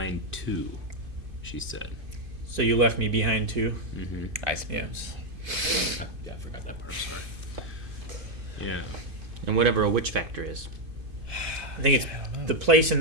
too, she said. So you left me behind too. Mm-hmm. I suppose. Yeah, I forgot that part. Sorry. Yeah. And whatever a witch factor is. I think it's the place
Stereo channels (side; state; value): left; late; 2.5 ms